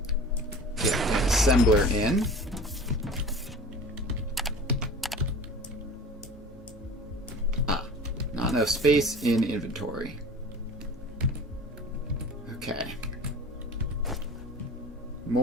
get an assembler in. Not enough space in inventory. Okay.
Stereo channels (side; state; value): both; normal; correlation 0.39